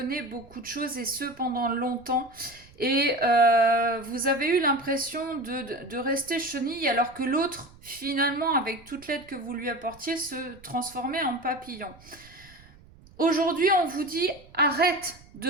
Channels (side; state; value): right; noise; rumble, 24 dB below the sound